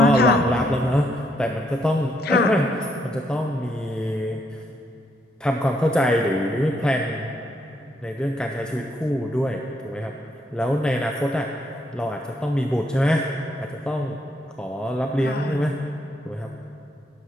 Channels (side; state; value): both; normal; correlation 0.74